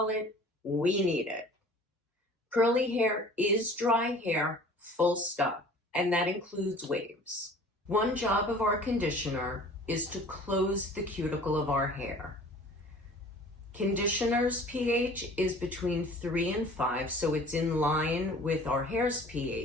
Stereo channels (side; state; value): both; normal; correlation 0.47